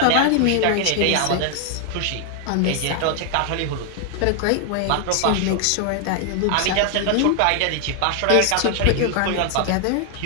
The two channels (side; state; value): both; different; correlation 0.00